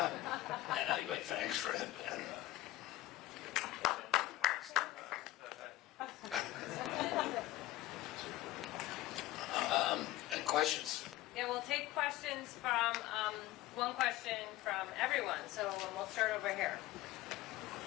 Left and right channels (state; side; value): quieter; right; 16.4 dB